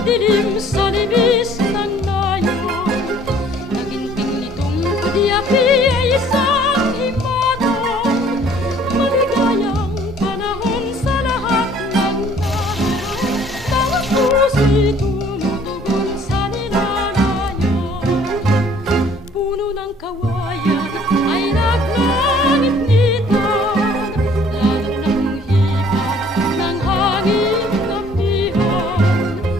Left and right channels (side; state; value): both; normal; correlation 0.57